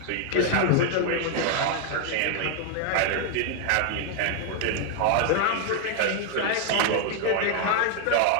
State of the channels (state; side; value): different; both; correlation 0.00